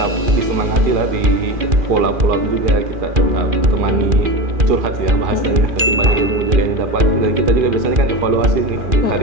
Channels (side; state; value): left; late; 2.4 ms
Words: disemangati lah, di follow-up juga, kita tetap temani, curhat ya bahasanya, tapi banyak ilmu juga yang didapat. Dan kita juga biasanya kan evaluasi nih,